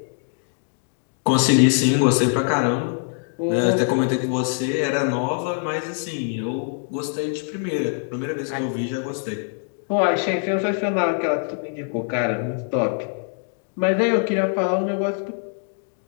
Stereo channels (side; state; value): right; silent; 60 dB below the other